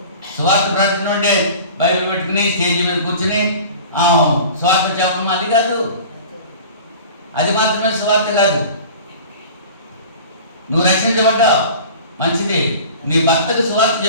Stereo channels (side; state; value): both; inverted; correlation -0.40